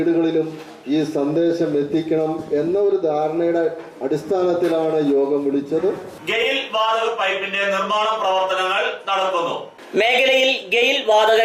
ഈ സന്ദേശം എത്തിക്കണം എന്ന ഒരു ധാരണയുടെ അടിസ്ഥാനത്തിലാണ് യോഗം വിളിച്ചത്. ഗെയിൽ വാതക പൈപ്പിന്റെ നിർമ്മാണ പ്രവർത്തനങ്ങൾ നടക്കുന്നു. മേഖലയിൽ ഗെയിൽ വാതക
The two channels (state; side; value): identical; both; correlation 1.00